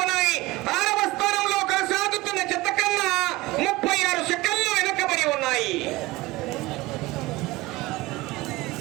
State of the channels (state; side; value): quieter; left; 20.0 dB